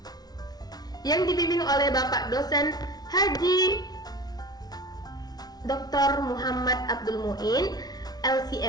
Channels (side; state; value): right; late; 0.19 ms